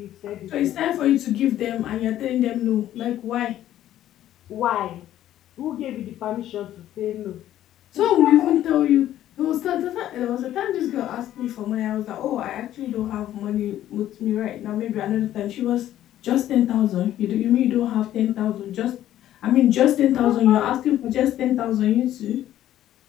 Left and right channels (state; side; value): quieter; right; 12.6 dB